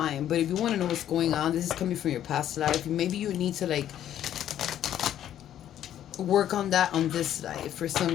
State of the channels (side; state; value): right; quieter; 11.1 dB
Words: But if you want to know what's going on, this is coming from your past life. Maybe you need to like work on that on this life for